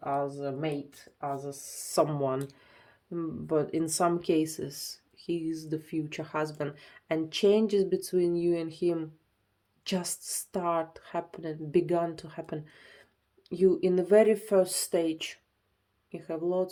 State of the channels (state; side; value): identical; both; correlation 1.00